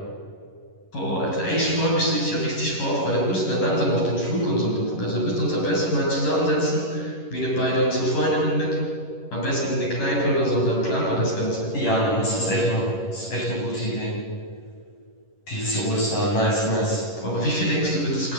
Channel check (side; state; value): right; late; 11 ms